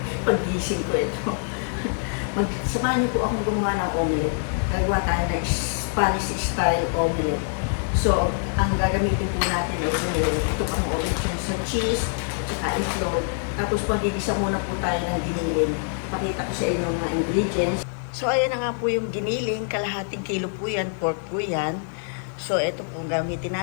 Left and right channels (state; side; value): silent; right; digital silence